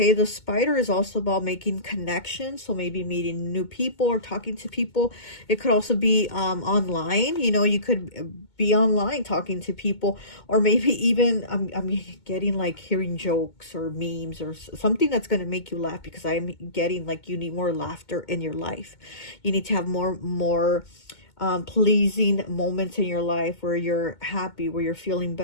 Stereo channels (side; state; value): right; late; 2.2 ms